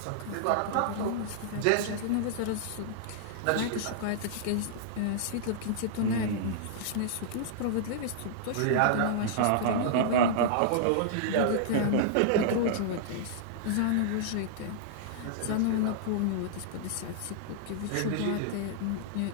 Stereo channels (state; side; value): different; both; correlation -0.02